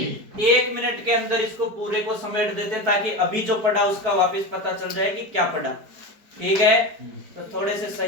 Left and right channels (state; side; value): late; left; 4.9 ms